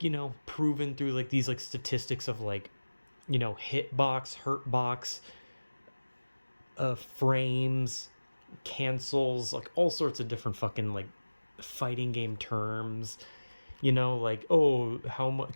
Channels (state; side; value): inverted; both; correlation -1.00